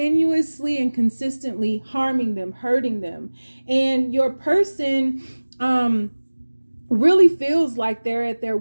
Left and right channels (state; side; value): inverted; both; correlation -1.00